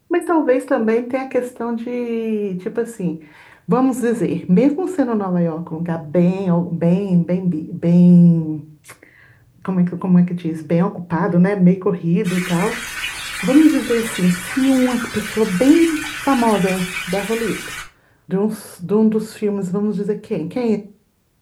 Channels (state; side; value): identical; both; correlation 1.00